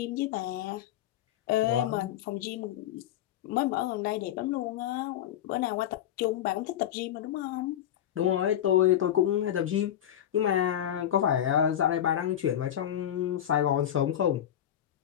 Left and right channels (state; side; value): quieter; right; 11.0 dB